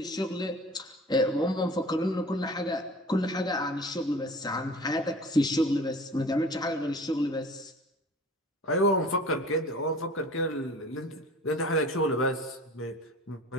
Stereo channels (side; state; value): both; normal; correlation 0.43